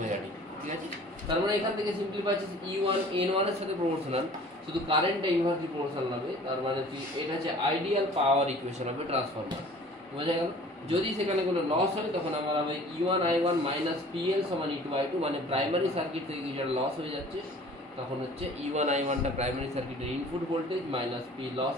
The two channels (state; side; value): normal; both; correlation 0.48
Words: D. ঠিক আছে, তার মানে এখান থেকে সিম্পলি পাচ্ছি E1 N1 এর সাথে প্রপোর্শনাল, শুধু কারেন্টটা ইনভার্সলি প্রপোর্শনাল হবে, তার মানে কি এটা হচ্ছে আইডিয়াল পাওয়ার ইকুয়েশন হবে ট্রান্সফরমার। বোঝা গেল? যদি সেখানে কোনো লস হয় তখন আমার হবে E1 I1 মাইনাস PL সমান E2 I2, মানে প্রাইমারি সার্কিট থেকে কিছু লস হয়ে যাচ্ছে, তখন হচ্ছে E1 I1টা প্রাইমারি সার্কিটের input voltage minus P